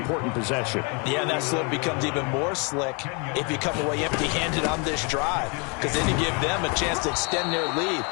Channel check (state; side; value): quieter; right; 33.5 dB